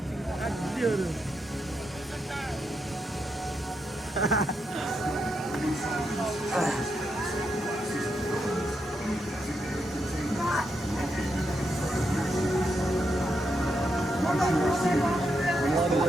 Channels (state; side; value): normal; both; correlation 0.82